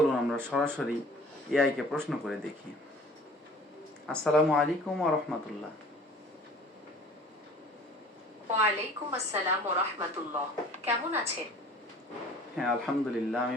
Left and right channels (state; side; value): normal; both; correlation 0.48